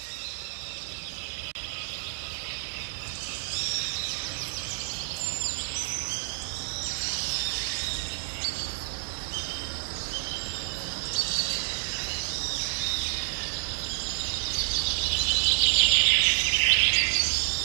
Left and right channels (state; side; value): silent; left; digital silence